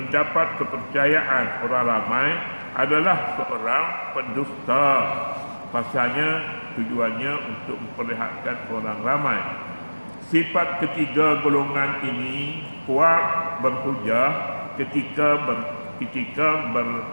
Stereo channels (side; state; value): both; inverted; correlation -1.00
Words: kepercayaan orang ramai adalah seorang pendusta. Pasalnya tujuannya untuk memperlihatkan orang ramai. Sifat ketiga golongan ini kuat berhujah ketika